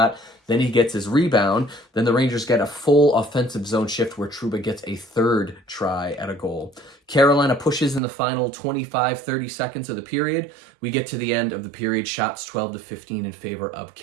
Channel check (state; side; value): drops out; left; at 8.0 s